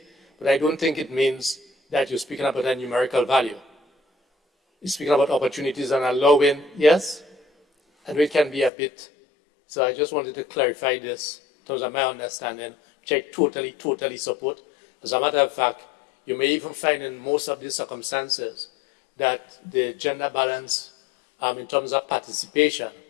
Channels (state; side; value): drops out; right; at 8.7 s